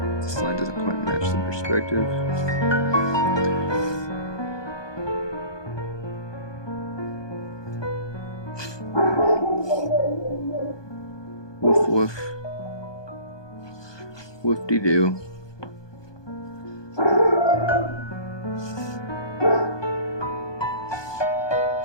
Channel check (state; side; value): late; right; 1.2 ms